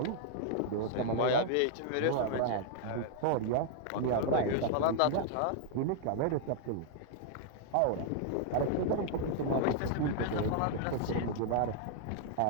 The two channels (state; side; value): different; both; correlation -0.01